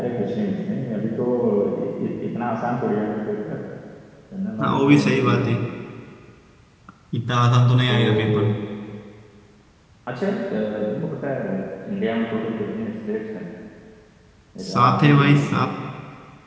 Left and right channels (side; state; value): both; identical; correlation 1.00